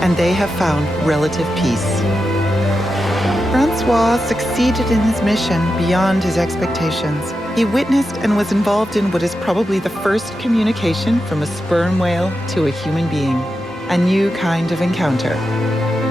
and they have found relative peace. François succeeded in his mission beyond his expectations. He witnessed and was involved in what is probably the first communication from a sperm whale to a human being, a new kind of encounter.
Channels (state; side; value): normal; both; correlation 0.89